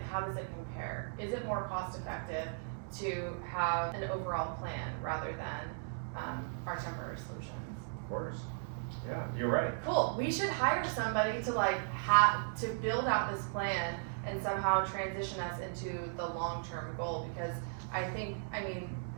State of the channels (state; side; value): silent; left; digital silence